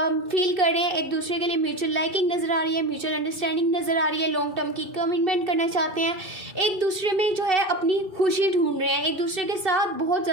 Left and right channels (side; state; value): left; late; 2.6 ms